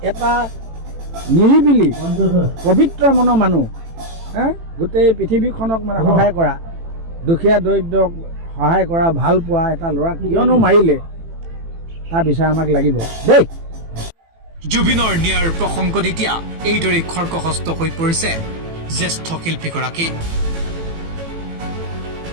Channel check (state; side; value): late; left; 18 ms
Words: এটা নিৰিবিলি পবিত্ৰ মনৰ মানুহ, গোটেই পৃথিৱীখনক মানে সহায় কৰা, দুখীয়া দৰিদ্ৰক সহায় কৰা, ভাল পোৱা এটা ল'ৰাক কিয়নো মাৰিলে, তাৰ বিচাৰ আমাক লাগিব দেই। জুবিনৰ ন্যায়ৰ প্ৰসংগত এতিয়া এইদৰে খৰ্গহস্ত হৈ পৰিছে জ্যেষ্ঠ শিল্পীগৰাকী।